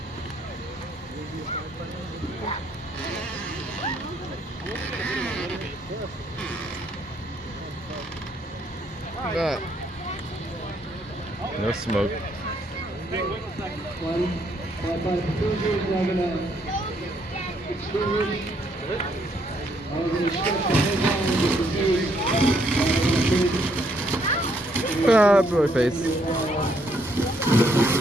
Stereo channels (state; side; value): normal; both; correlation 0.71